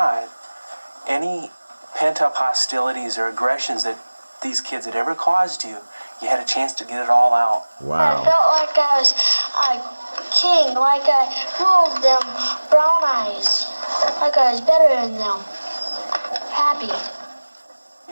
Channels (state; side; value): inverted; both; correlation -1.00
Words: any pent-up hostilities or aggressions that these kids had ever caused you, you had a chance to get it all out. Wow. I felt like I was a king, like I ruled them brown eyes, like I was better than them. Happy.